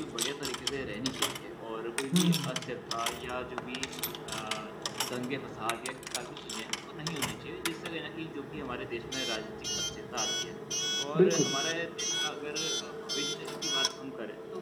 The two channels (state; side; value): identical; both; correlation 1.00